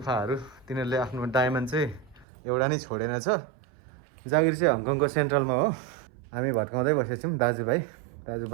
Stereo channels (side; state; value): left; drops out; at 2.2 s